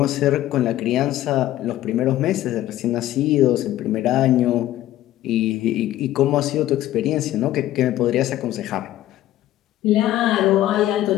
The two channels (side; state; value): right; quieter; 14.0 dB